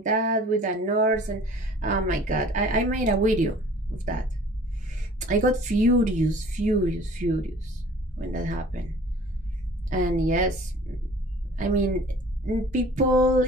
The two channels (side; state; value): both; normal; correlation 0.48